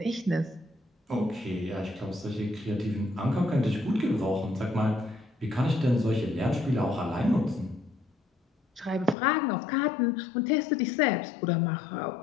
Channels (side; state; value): right; drops out; at 9.2 s